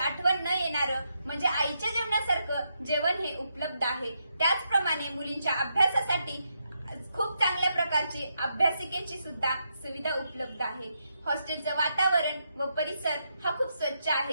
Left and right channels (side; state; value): both; inverted; correlation -0.81